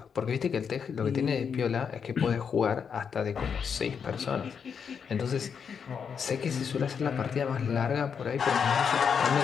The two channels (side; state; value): right; quieter; 6.8 dB